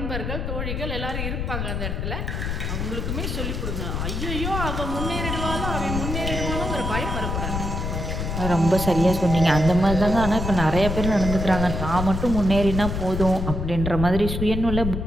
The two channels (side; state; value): left; noise; rumble, 3 dB below the sound